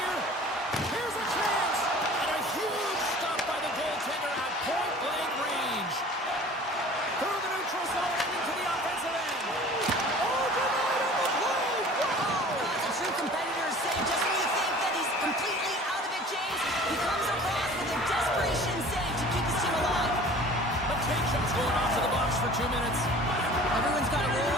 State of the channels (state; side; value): normal; both; correlation 0.45